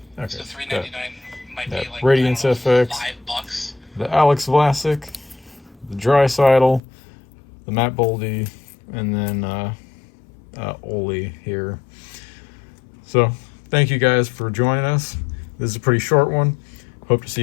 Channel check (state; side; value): drops out; right; at 6.8 s